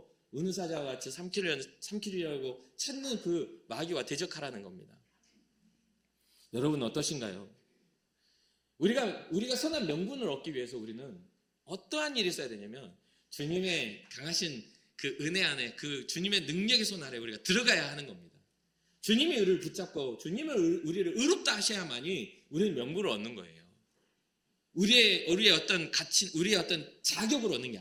은사자와 같이 삼키려고 찾는 그 마귀와 대적하라는 겁니다. 여러분 어떠신가요? 우리가 선한 명분을 얻기 위해서 우리는 어떠한 일이 있어야 되냐면 주님의 강하신 그 은혜 안에 그 주님의 능력의 손 아래 우리가 들어가야 하는 겁니다. 주님이 우리를 붙잡고 우리를 의롭다 하셔야만이 우리는 명분을 얻는 거예요. 우리의 어떤 가치, 우리의 어떤 자격을 얻는 게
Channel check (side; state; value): both; identical; correlation 1.00